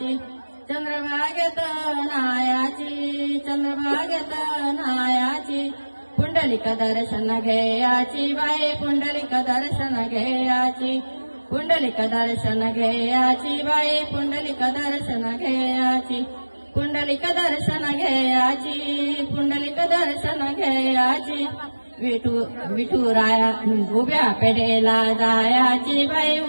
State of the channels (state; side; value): inverted; both; correlation -1.00